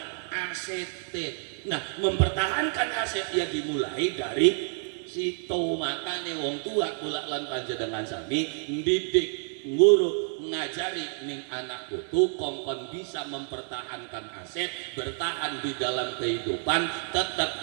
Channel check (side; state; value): left; silent; 59 dB below the other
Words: asete. Nah, mempertahankan aset ya dimulai dari situ. Makane wong tua kula lan panjenengan sami ndidik, nguruk, ngajari ning anak putu kongkon bisa mempertahankan aset, bertahan di dalam kehidupan,